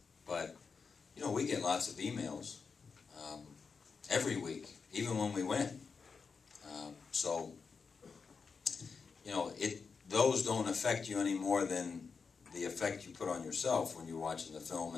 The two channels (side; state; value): right; quieter; 5.3 dB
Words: But, you know, we get lots of emails every week, even when we win. So, you know, those don't affect you any more than the effect you put on yourself when you're watching the film.